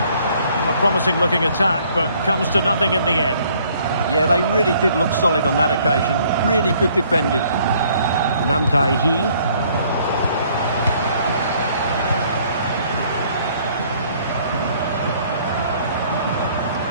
A promising looking attack, but comes to nothing in the end. Yeah, they really did look solid on that occasion. Really good defending. Nam Tai-hee.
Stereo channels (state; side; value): inverted; both; correlation -0.61